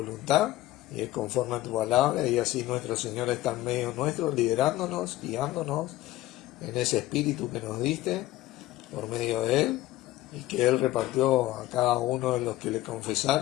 y es conforme a tu palabra, y así nuestro Señor está en medio nuestro, liderándonos, guiándonos en ese espíritu que nos diste por medio de Él y que Él repartió a cada uno de los que le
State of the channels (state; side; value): quieter; right; 15.8 dB